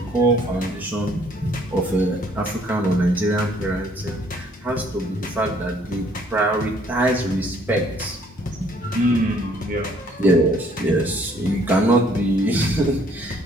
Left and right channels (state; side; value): normal; both; correlation 0.62